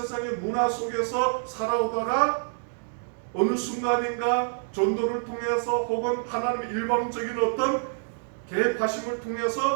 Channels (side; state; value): left; silent; digital silence